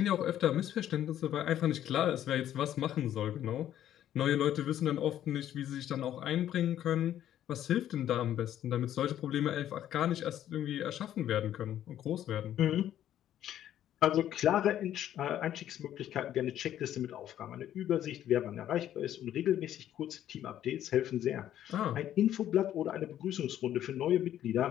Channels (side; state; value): right; quieter; 11.5 dB